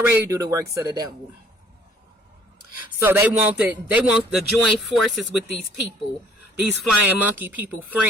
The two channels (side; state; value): both; normal; correlation 0.58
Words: do the works of the devil. So they want to join forces with these people, these flying monkey people,